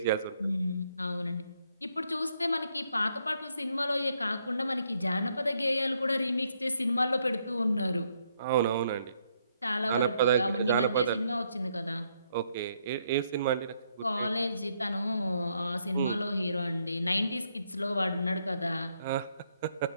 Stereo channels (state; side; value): inverted; both; correlation -0.74